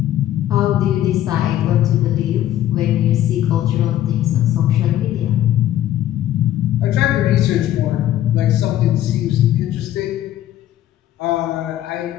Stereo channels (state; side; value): quieter; right; 12.6 dB